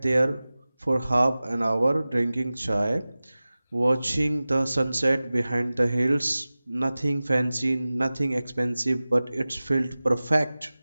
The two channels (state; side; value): inverted; both; correlation -0.98